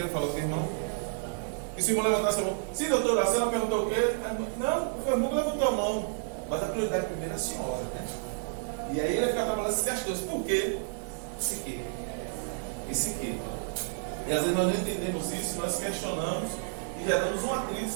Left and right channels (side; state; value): left; silent; 58 dB below the other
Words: falar com o irmão? E se o irmão levantasse a mão, sim, doutora, a senhora perguntou o quê? Não, o irmão levantou a mão. Mas a prioridade primeiro é a senhora, né? E aí ele ia ficar trabalhando essas questões. Por quê? Esse quê? Esse quê? E às vezes nós não entendemos isso, nós questionamos e já damos um atrito